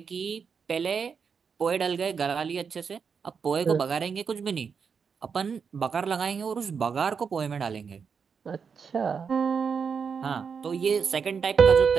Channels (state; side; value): quieter; left; 6.1 dB